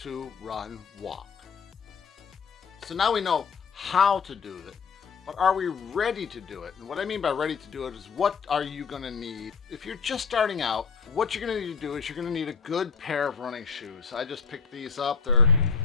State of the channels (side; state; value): right; quieter; 5.7 dB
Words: run walk. So now we know how to do it. but are we ready to do it? And what I mean by ready to do it is, what are you gonna need? If you're just starting out, what you're gonna need to do is you're gonna need a good pair of running shoes. I just picked these up. They're